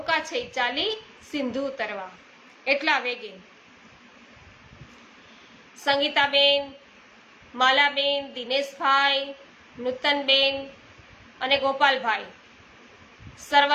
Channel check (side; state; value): both; identical; correlation 1.00